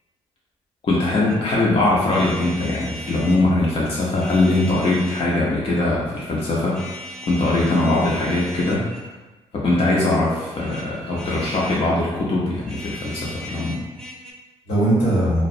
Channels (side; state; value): both; normal; correlation 0.68